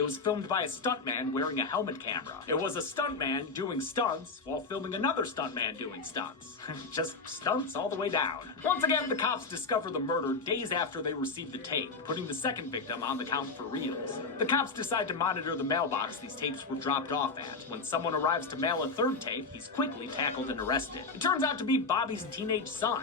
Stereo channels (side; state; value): right; quieter; 4.1 dB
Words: was filmed by a stuntman wearing a helmet camera. It was a stuntman doing stunts while filming another stuntman doing stunts. Just stunts all the way down. Once again, the cops discover the murder days after they receive the tape, putting the second victim on the count for reals. The cops decide to monitor the mailbox these tapes were dropped off at. When someone arrives to mail a third tape, he's quickly tackled and arrested. It turns out to be Bobby's teenage son,